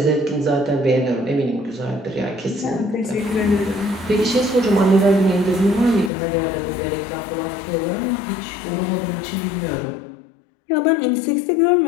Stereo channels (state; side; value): drops out; right; at 6.1 s